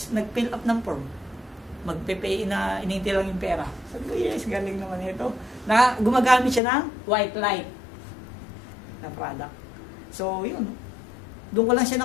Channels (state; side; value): drops out; right; at 6.6 s